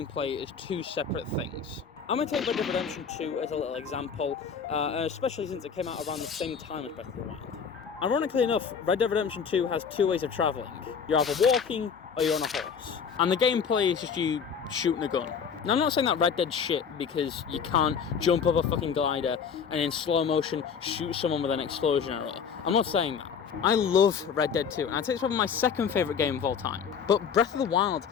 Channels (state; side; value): quieter; right; 6.6 dB